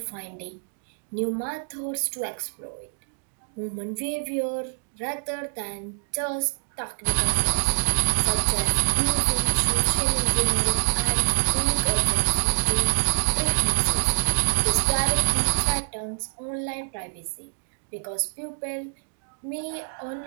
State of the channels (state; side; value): silent; left; digital silence